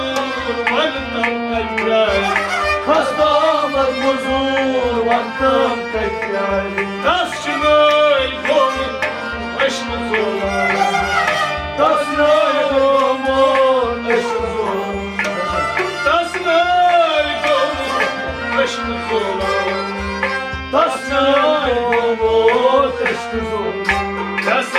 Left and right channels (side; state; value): both; identical; correlation 1.00